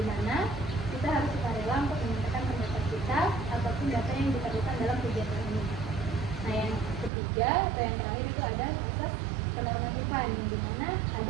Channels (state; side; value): drops out; left; at 7.1 s